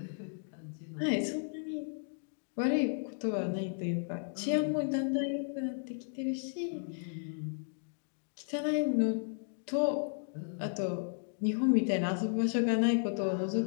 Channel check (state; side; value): silent; right; digital silence